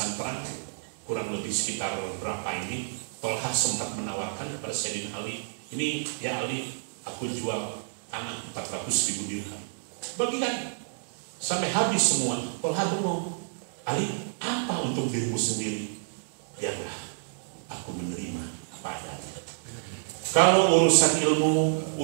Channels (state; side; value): silent; left; digital silence